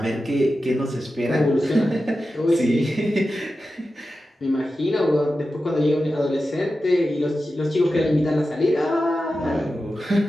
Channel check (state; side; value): normal; both; correlation 0.92